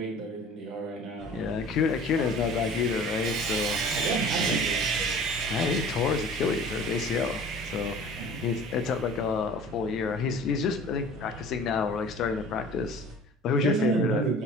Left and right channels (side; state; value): both; normal; correlation 0.44